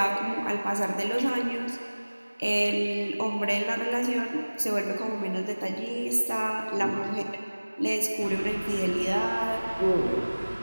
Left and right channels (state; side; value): inverted; both; correlation -1.00